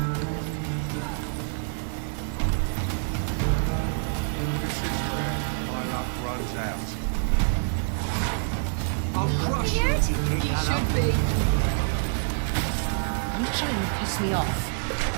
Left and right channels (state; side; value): silent; left; digital silence